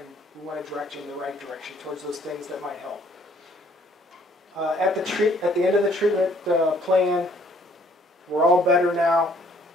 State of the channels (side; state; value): both; normal; correlation 0.62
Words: we want to direct you in the right direction towards those things that might help. At the end of the treatment plan, we're all better now.